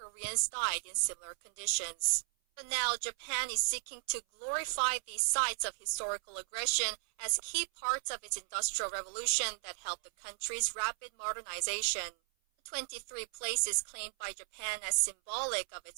died in similar conditions. But now Japan is seeking to glorify these sites of historical aggression as key parts of its industrial revolution that helped the country's rapid modernization. The 23 places claimed by Japan as symbolic of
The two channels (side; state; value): left; silent; 54 dB below the other